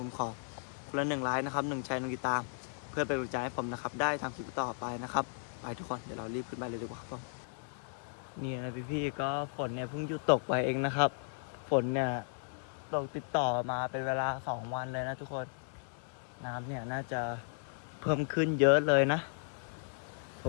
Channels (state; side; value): silent; right; digital silence